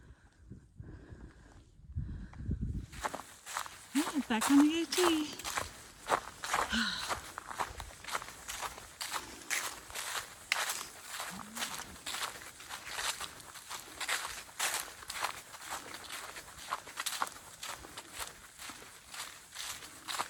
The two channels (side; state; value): both; identical; correlation 1.00